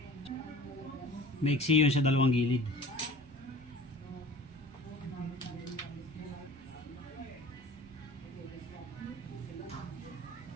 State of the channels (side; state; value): both; normal; correlation 0.43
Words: Maiksi yun sa dalawang gilid.